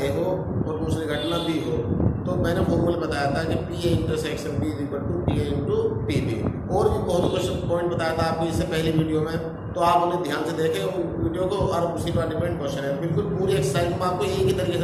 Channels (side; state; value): both; identical; correlation 1.00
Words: हो और दूसरी घटना बी हो। तो मैंने फॉर्मूला बताया था कि P A intersection B equal to P A into P B. और भी बहुत क्वेश्चन पॉइंट बताया था आपको इससे पहले वीडियो में, तो आप उन्हें ध्यान से देखें वीडियो को। और उसी पर डिपेंड क्वेश्चन है, बिल्कुल पूरी एक्सरसाइज मैं आपको एक ही तरीके से